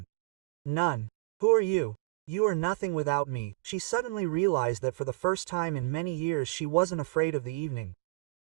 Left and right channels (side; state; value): left; quieter; 24.2 dB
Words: None. Who are you? You are nothing without me. She suddenly realized that for the first time in many years she wasn't afraid of the evening.